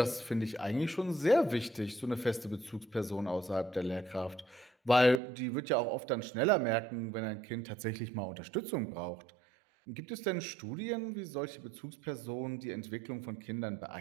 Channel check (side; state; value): left; drops out; at 5.2 s